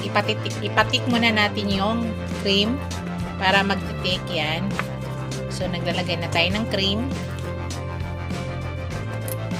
ipatik muna natin yung cream para magtitik yan. So naglalagay na tayo ng cream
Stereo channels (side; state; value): both; identical; correlation 1.00